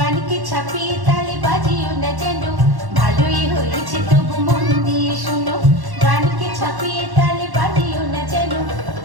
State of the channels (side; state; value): left; late; 1.1 ms